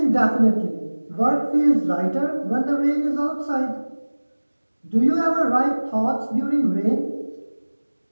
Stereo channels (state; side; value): inverted; both; correlation -1.00